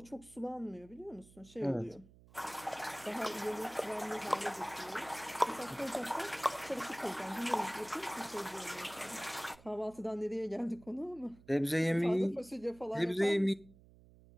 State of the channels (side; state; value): right; noise; hum, 23 dB below the sound